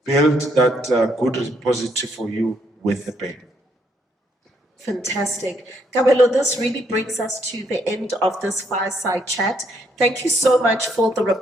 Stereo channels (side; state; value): both; normal; correlation 0.72